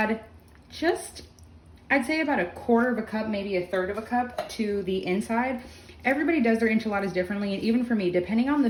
just, I'd say about a quarter of a cup, maybe a third of a cup to the inside. Everybody does their enchiladas differently, and even for me, depending on the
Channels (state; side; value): identical; both; correlation 1.00